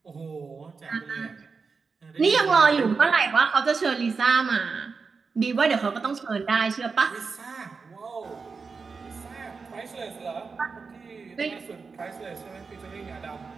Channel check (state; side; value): quieter; left; 4.9 dB